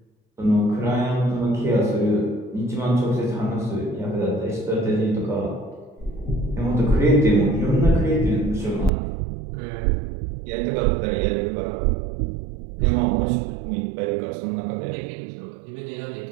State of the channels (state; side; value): drops out; left; at 8.9 s